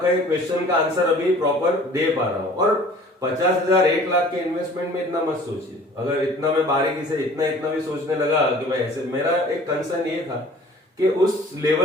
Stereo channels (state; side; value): normal; both; correlation 0.49